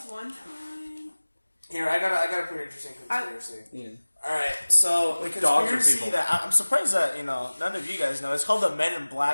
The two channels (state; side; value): inverted; both; correlation -1.00